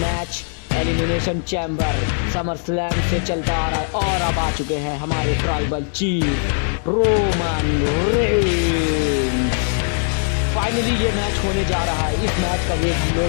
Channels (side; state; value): right; silent; digital silence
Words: elimination chamber summer slam से चलता आ रहा है। और अब आ चुके हैं हमारे tribal chief Roman Reigns. Finally ये मैच होने जा रहा है। इस मैच का वेट हम